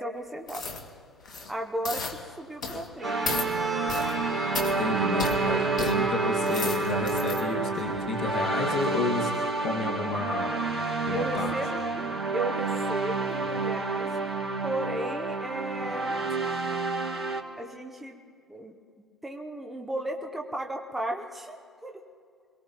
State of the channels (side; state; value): both; normal; correlation 0.48